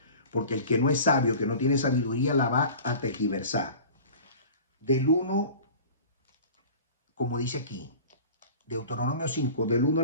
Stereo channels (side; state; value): both; inverted; correlation -0.40